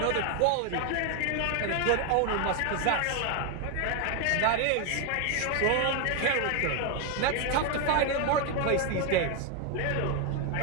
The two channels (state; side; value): different; both; correlation 0.01